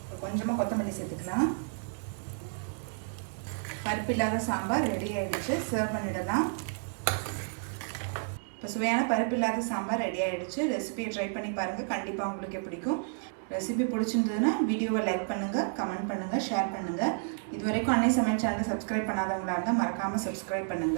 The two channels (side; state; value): left; silent; 57 dB below the other